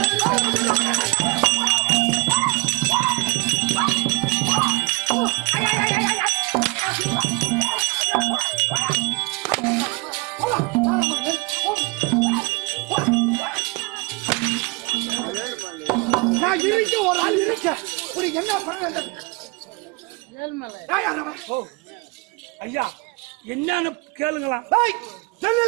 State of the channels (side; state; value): left; quieter; 26.2 dB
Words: நான் இருக்க ஒரு ஆள் இருக்க உனக்கு என்ன பண்ண ஐயா என்னன்னு கேளுங்களாம்.